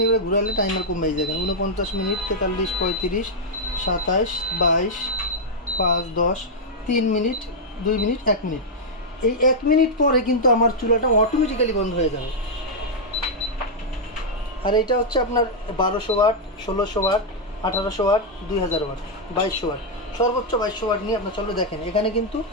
এবারে ঘুরালে টাইমার কমে দেখেন 49 মিনিট, 43, 35, 27, 22, 5, 10, 3 মিনিট, 2 মিনিট, 1 মিনিট। এই 1 মিনিট পরে কিন্তু আমার চুলাটা অটোমেটিক্যালি বন্ধ হয়ে যাবে। আর এটা হচ্ছে আপনার 1200 watt, 1600 watt, 1800 watt, 2000 watt, 2200 watt, সর্বোচ্চ 2200 ওয়াট নিয়ে আপনার চলবে। দেখেন এখানে কিন্তু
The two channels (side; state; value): both; normal; correlation -0.04